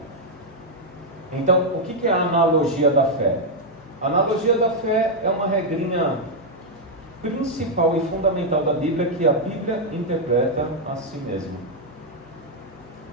Então, o que é a analogia da fé? A analogia da fé é uma regrinha principal e fundamental da Bíblia, que a Bíblia interpreta a si mesma.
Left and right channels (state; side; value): normal; both; correlation -0.02